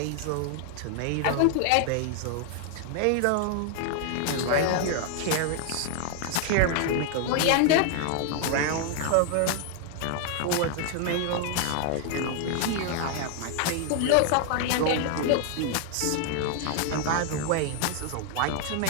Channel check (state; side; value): different; both; correlation 0.00